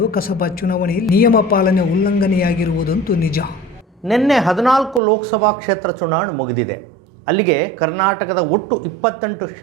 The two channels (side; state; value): left; drops out; at 5.0 s